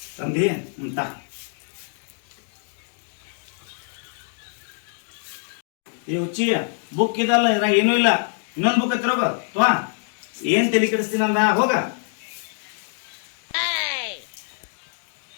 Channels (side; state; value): right; silent; 61 dB below the other